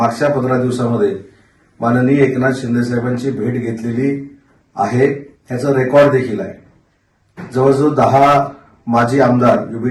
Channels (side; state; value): both; identical; correlation 1.00